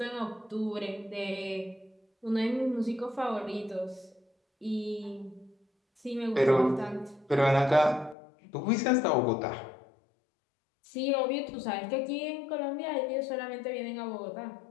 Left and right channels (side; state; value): right; drops out; at 8.2 s